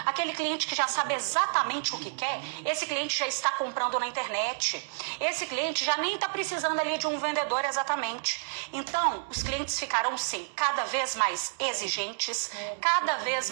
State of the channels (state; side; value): silent; left; digital silence